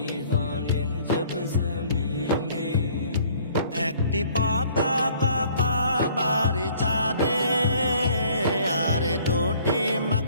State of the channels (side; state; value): both; inverted; correlation -0.57